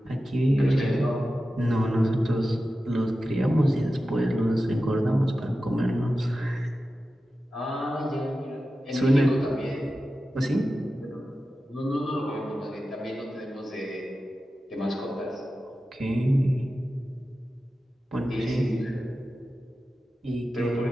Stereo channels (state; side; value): normal; both; correlation 0.93